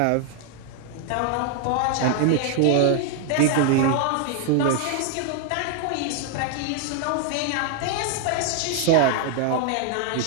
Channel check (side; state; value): both; different; correlation 0.00